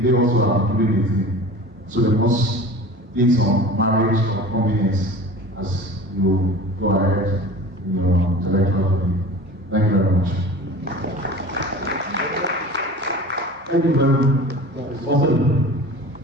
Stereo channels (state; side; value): normal; both; correlation 0.38